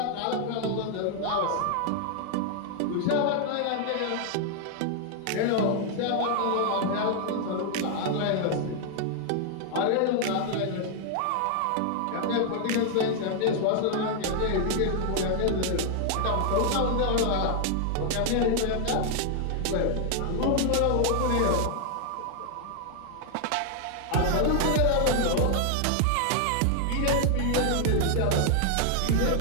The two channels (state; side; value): different; both; correlation 0.00